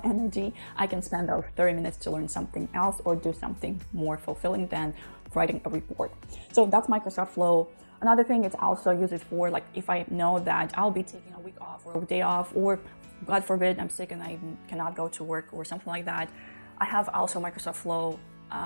energy. I can spend those 30 minutes to learn something else or do something more fulfilling than writing a report. So that's Microsoft Flow. Another thing, it's also used for like if I know that I'll be taking a week off or a day off, or God forbid I'm sick and I cannot go to work or something like that. I have also Microsoft Flow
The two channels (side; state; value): both; inverted; correlation -1.00